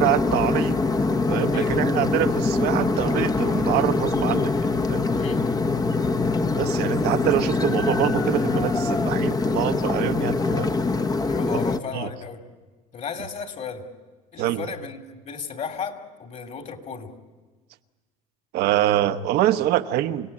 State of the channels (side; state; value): both; normal; correlation 0.51